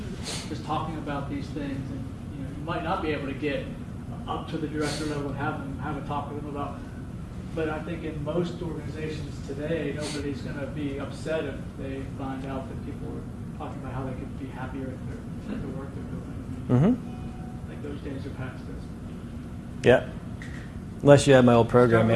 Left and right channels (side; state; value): both; identical; correlation 1.00